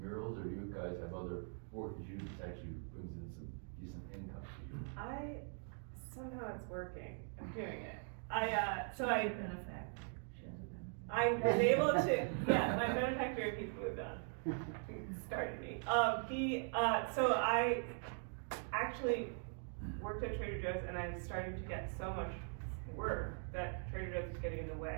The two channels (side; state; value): left; silent; 50 dB below the other